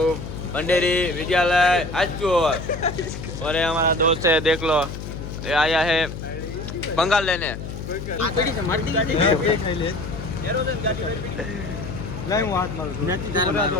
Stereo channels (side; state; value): left; noise; hum, 8 dB below the sound